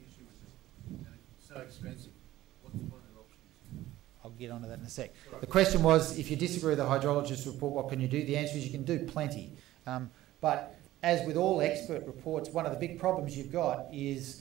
with it, and it's so expensive, what are their options? I'll get onto that in a sec. The question was, if you disagree with the hydrologist report, what can you do? The answer is you can do plenty. But as with all expert reports, one of the big problems you've got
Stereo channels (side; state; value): left; quieter; 15.3 dB